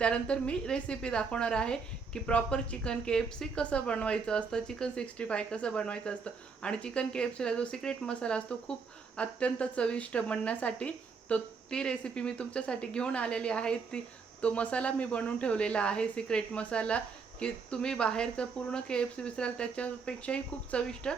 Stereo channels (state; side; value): quieter; left; 5.1 dB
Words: मी रेसिपी दाखवणार आहे की प्रॉपर चिकन KFC कसं बनवायचं असतं, चिकन 65 कसं बनवायचं असतं. आणि चिकन KFCला जो सिक्रेट मसाला असतो खूप अत्यंत चविष्ट बनण्यासाठी, तो ती रेसिपी मी तुमच्यासाठी घेऊन आलेली आहे. तो मसाला मी बनवून ठेवलेला आहे, सिक्रेट मसाला, की तुम्ही बाहेरचं पूर्ण KFC विसराल त्याच्यापेक्षाही खूप चविष्ट